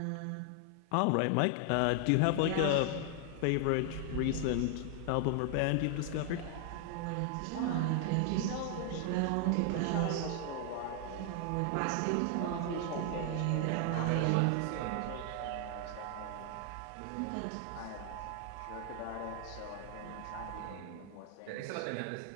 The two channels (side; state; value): both; different; correlation 0.00